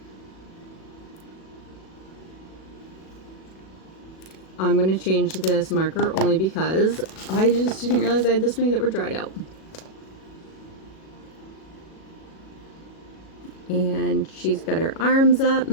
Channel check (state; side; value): late; right; 37 ms